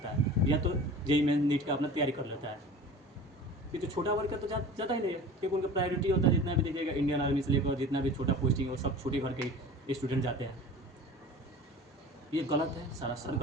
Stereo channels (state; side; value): normal; both; correlation 0.39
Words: है, या तो जेईई मेंस नीट का अपना तैयारी कर लेता है। ये तो छोटा वर्ग का तो ज़्यादा ही नहीं है, क्योंकि उनका प्रायोरिटी होता है, जितना भी देखिएगा इंडियन आर्मी से लेकर जितना भी छोटा पोस्टिंग वो सब छोटे घर के स्टूडेंट जाते हैं। ये गलत है, सरासर